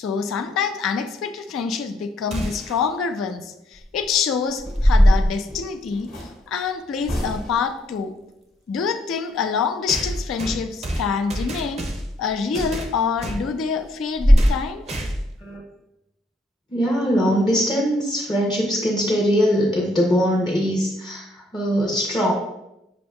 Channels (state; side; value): normal; both; correlation 0.72